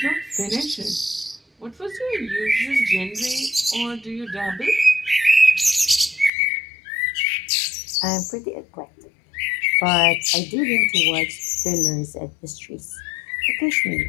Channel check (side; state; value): right; drops out; at 6.3 s